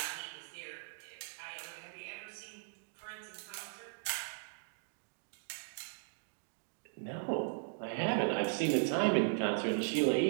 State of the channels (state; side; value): silent; left; digital silence